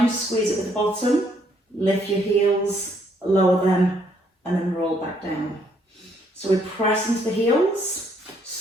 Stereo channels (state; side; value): normal; both; correlation 0.69